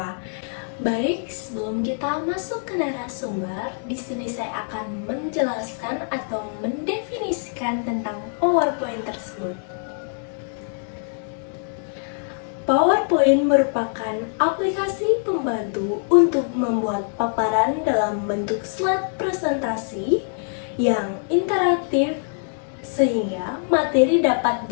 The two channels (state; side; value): silent; right; 60 dB below the other